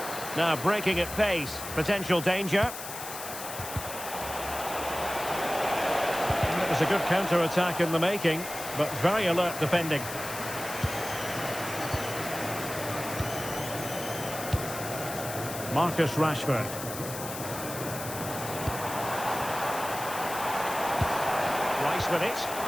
Now breaking at pace. Potential danger. And it was a good counter-attack in the making, but very alert defending. Marcus Rashford. Rice with it.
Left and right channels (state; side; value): noise; left; hiss, 9 dB below the sound